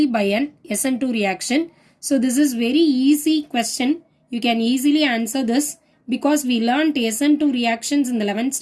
by an SN2 reaction? So this is very easy question. You can easily answer this because we learned SN2 reactions in the 11th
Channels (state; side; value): identical; both; correlation 1.00